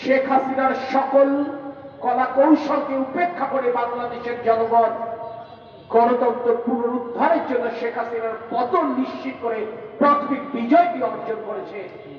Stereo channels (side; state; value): both; identical; correlation 1.00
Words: শেখ হাসিনার সকল কলা কৌশলকে উপেক্ষা করে বাংলাদেশের জনগণ গণতন্ত্র পুনরুদ্ধারের জন্য শেখ হাসিনার পতন নিশ্চিত করে প্রাথমিক বিজয়টি অর্জন করেছে,